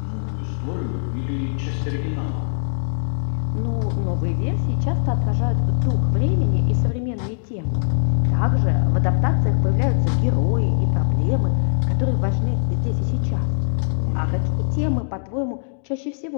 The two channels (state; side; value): silent; right; digital silence